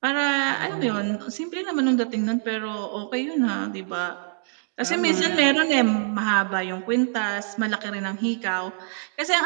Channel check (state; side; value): silent; left; digital silence